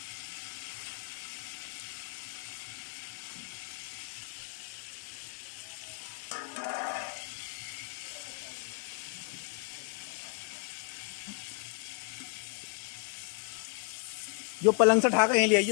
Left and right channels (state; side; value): quieter; right; 35.4 dB